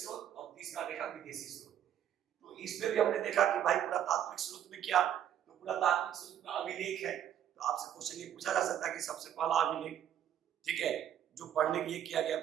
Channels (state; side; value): quieter; left; 10.2 dB